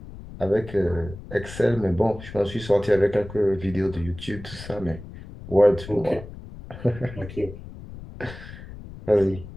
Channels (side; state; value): left; noise; rumble, 14 dB below the sound